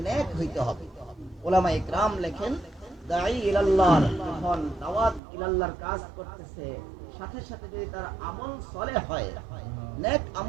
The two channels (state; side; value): drops out; left; at 5.2 s